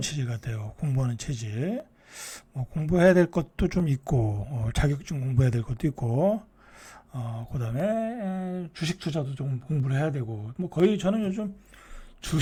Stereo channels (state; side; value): identical; both; correlation 1.00